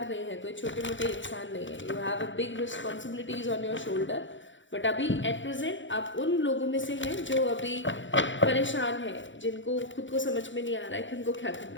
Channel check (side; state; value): right; late; 0.55 ms